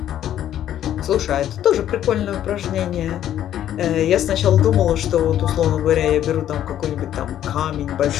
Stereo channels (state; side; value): quieter; right; 11.3 dB